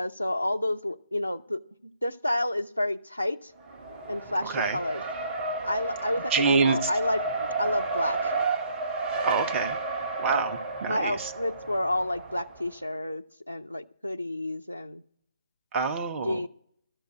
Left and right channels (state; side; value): inverted; both; correlation -0.69